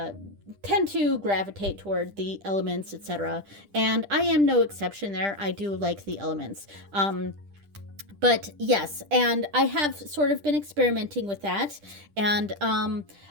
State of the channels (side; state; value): left; late; 10 ms